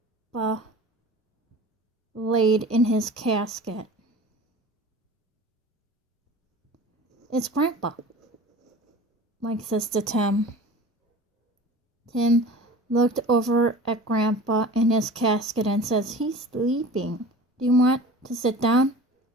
laid in his casket. It's Grandpa, Mike says to Tim. Tim looked over at Grandpa in his casket and says, he's sleeping. Do you want to sit down?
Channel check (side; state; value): both; normal; correlation 0.39